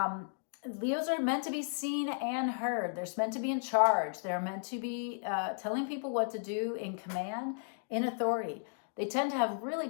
Leos are meant to be seen and heard. They're meant to be in charge. They're meant to be telling people what to do, in command, in authority. They tend to have really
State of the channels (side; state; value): right; silent; digital silence